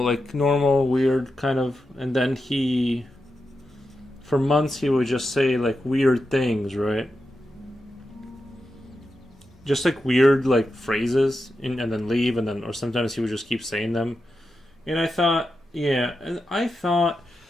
normal, weird kind of, and then for months he would just say like weird things, right? Just like weird like phrases, and then leave, and then or sometimes he would just keep saying them, and I thought, yeah, and I thought,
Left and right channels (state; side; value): normal; both; correlation 0.89